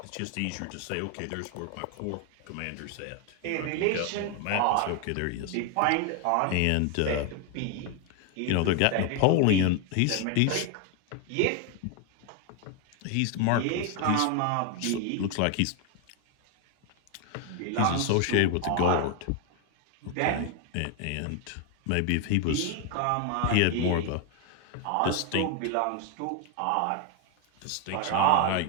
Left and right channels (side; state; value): both; different; correlation 0.01